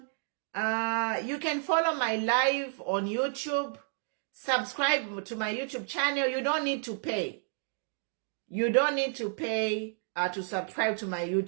you can follow my live on YouTube. Subscribe to my YouTube channel. You don't need to pay. You don't need to pay to subscribe to my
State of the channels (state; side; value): silent; left; digital silence